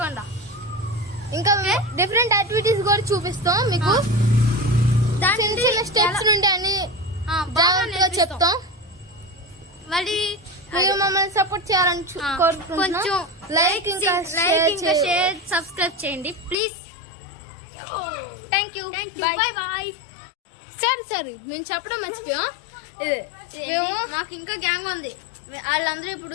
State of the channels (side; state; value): right; drops out; at 16.6 s